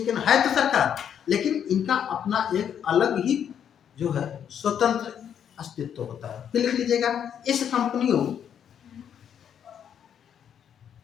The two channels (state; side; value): quieter; right; 8.7 dB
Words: है ना, है तो सरकार, लेकिन इनका अपना एक अलग ही जो है स्वतंत्र अस्तित्व होता है। फिर लिख लीजिएगा, इस कंपनियों